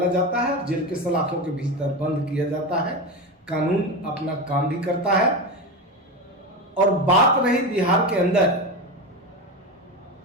जाता है, जेल के सलाखों के भीतर बंद किया जाता है। कानून अपना काम भी करता है। और बात रही बिहार के अंदर,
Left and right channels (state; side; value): normal; both; correlation 0.20